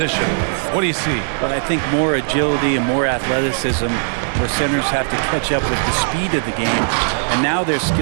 what do you see? Well, I think more agility and more athleticism, where centers have to catch up with the speed of the game. And now their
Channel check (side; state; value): left; silent; 67 dB below the other